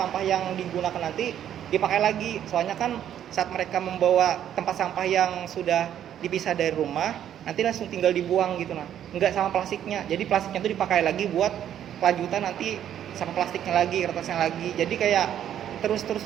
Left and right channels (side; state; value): left; quieter; 10.3 dB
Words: yang digunakan nanti dipakai lagi, soalnya kan saat mereka membawa tempat sampah yang sudah dipisah dari rumah nanti langsung tinggal dibuang gitu nah, nggak sama plastiknya. Jadi plastiknya itu dipakai lagi buat kelanjutan nanti sama plastiknya lagi, kertasnya lagi, jadi kayak terus